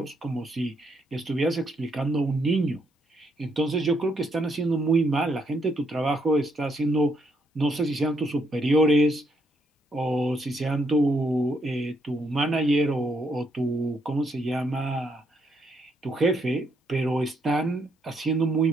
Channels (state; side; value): normal; both; correlation 0.75